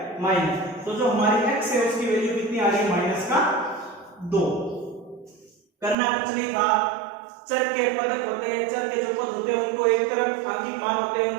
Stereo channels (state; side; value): drops out; left; at 6.0 s